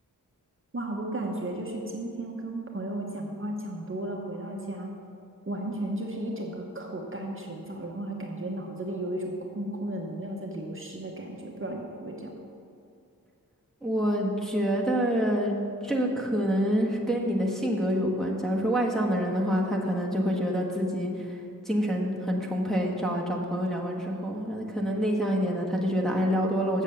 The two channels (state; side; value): normal; both; correlation 0.64